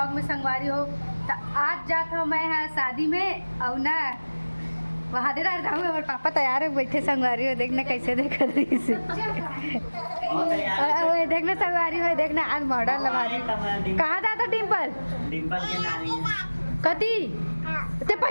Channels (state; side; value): inverted; both; correlation -1.00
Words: में संगवारी हो। तो आज जात हो मैं यहाँ शादी में और ना वहाँ दे रहा हूँ। हमारे पापा तैयार है बैठे संगवारी हो, देखना कैसे देख रही से देखना संगवारी हो, देखना आज मॉडल लवारी। कहाँ जाता डिम्पल? डिम्पल के नानी कती ते